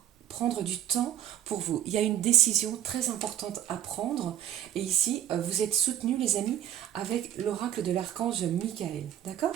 prendre du temps pour vous. Il y a une décision très importante à prendre. Et ici, vous êtes soutenus, les amis, avec l'oracle de l'archange Michael. D'accord?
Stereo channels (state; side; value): quieter; left; 11.1 dB